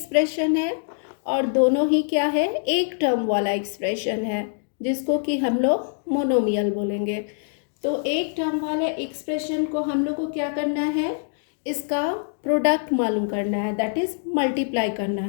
है और दोनों ही क्या है, एक टर्म वाला एक्सप्रेशन है जिसको कि हम लोग मोनोमियल बोलेंगे। तो एक टर्म वाले एक्सप्रेशन को हम लोग को क्या करना है, इसका प्रोडक्ट मालूम करना है, दैट इज मल्टीप्लाई करना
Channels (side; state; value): right; silent; digital silence